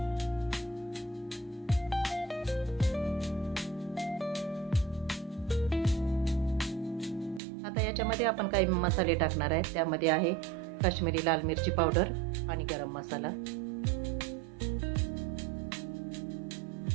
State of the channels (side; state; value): left; drops out; at 7.4 s